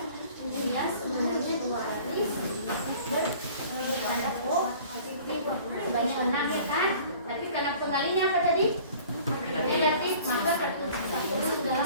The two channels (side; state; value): both; inverted; correlation -0.49